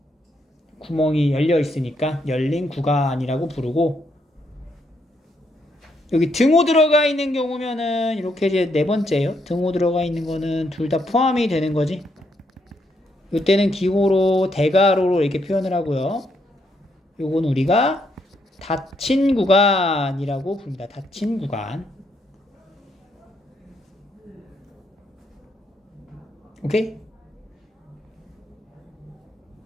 구멍이 열려 있으니까 열린 구간이라고 부르고, 여기 등호 들어가 있는 경우면은 이렇게 이제 네 번째예요. 등호 들어가 있는 거는 둘 다 포함이 되는 거지. 이때는 기호로 대괄호로 이렇게 표현을 하고요. 요건 우리가 닫힌 구간이라고 부릅니다. 닫힌 구간. 오케이?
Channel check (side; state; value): both; normal; correlation 0.76